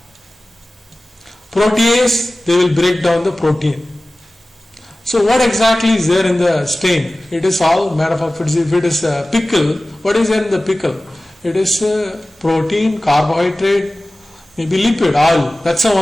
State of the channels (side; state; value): both; normal; correlation 0.97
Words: Protease, they will break down the protein. So what exactly is there in the stain? It is all made up of, if it is a pickle, what is there in the pickle? It is protein, carbohydrate, maybe lipid, oil. That's the